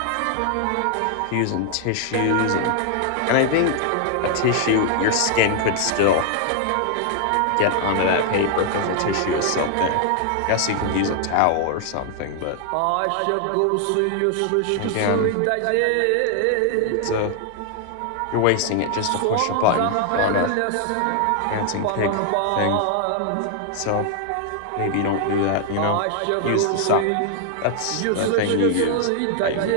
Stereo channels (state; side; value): different; both; correlation 0.00